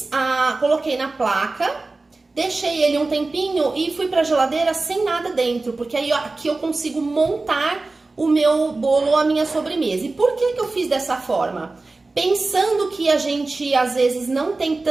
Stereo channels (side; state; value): left; quieter; 3.4 dB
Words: coloquei na placa, deixei ele um tempinho e fui pra geladeira sem nada dentro, porque aí aqui eu consigo montar o meu bolo ou a minha sobremesa. E por que eu fiz dessa forma? Pensando que a gente, às vezes, não tem